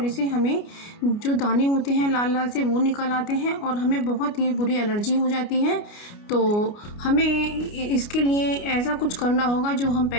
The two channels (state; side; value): late; right; 29 ms